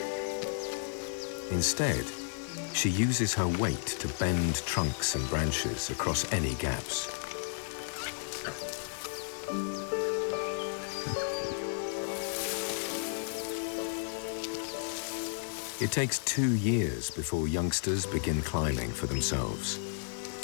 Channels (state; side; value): silent; right; digital silence